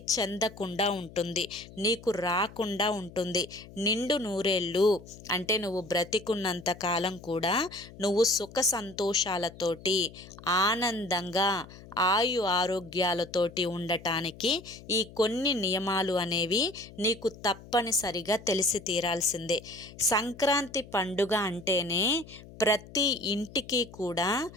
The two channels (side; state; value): left; noise; hum, 18 dB below the sound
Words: చెందకుండా ఉంటుంది, నీకు రాకుండా ఉంటుంది. నిండు నూరేళ్ళు అంటే నువ్వు బ్రతికున్నంత కాలం కూడా నువ్వు సుఖ సంతోషాలతోటి ఆనందంగా ఆరోగ్యాలతోటి ఉండటానికి ఈ కొన్ని నియమాలు అనేవి నీకు తప్పనిసరిగా తెలిసి తీరాల్సిందే. సంక్రాంతి పండుగ అంటేనే ప్రతి ఇంటికి కూడా